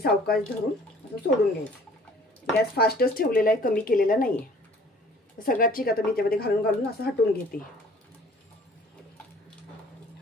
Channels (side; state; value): both; normal; correlation 0.54